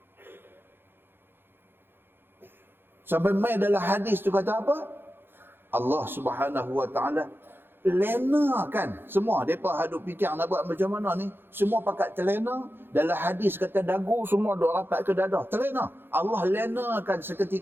Sampai mai dalam hadis tu kata apa? Allah Subhanahu wa taala lenakan semua. Depa hadut fikir nak buat macam mana ni, semua pakat terlena. Dalam hadis kata dagu semua duk rapat ke dada, terlena. Allah lenakan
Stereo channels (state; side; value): late; left; 0.10 ms